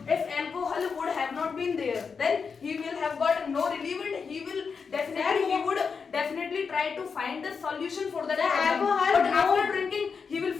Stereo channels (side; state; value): right; quieter; 5.6 dB